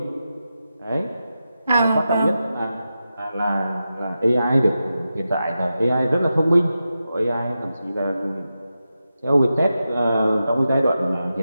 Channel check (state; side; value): inverted; both; correlation -0.90